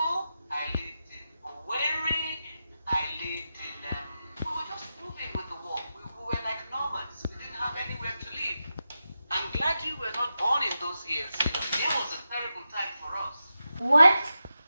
I lived in Owerri, I lived in, we were just moving with the war. We were like nomads. We didn't have anywhere to live. I'm glad you were not born in those years. It was a terrible time for us. What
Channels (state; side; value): inverted; both; correlation -0.90